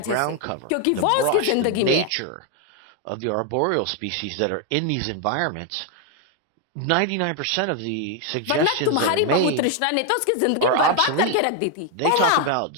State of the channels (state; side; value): different; both; correlation 0.01